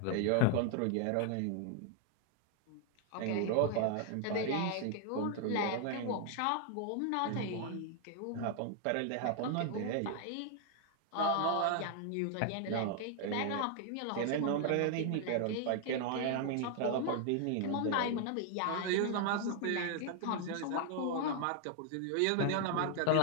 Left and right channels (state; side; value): different; both; correlation 0.00